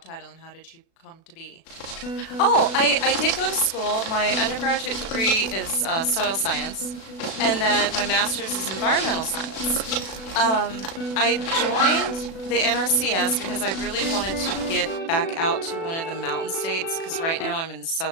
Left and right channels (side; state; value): right; late; 36 ms